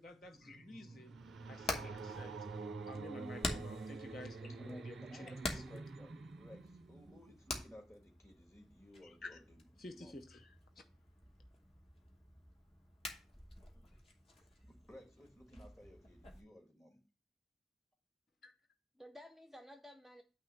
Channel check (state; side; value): normal; both; correlation 0.72